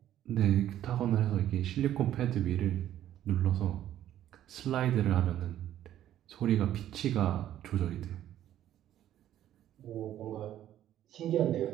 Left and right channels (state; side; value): quieter; left; 12.0 dB